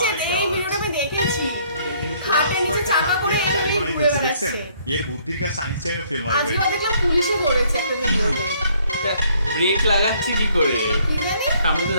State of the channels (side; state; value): both; inverted; correlation -0.64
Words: যে মাই এই গড, ভিডিওটা আমি দেখেছি, খাটের নিচে চাকা করে গাড়ি এমনি বানাই ঘুরে ফেলছে, বেড়াচ্ছে। দেখছেন? এর বুদ্ধির কাছে আইনস্টাইনও ফেল মারবে। আজকে দেখলাম পুলিশে ধরেছে একটা ভিডিওতে, ব্রেক লাগাচ্ছে কি করে, কি জানি? সামনে তো